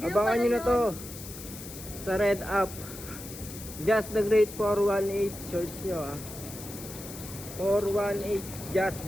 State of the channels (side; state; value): left; noise; hiss, 13 dB below the sound